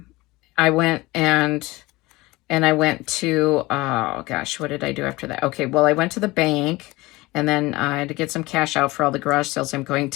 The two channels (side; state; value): right; quieter; 21.1 dB